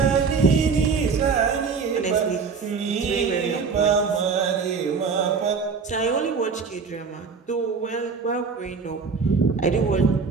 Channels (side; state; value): left; quieter; 5.3 dB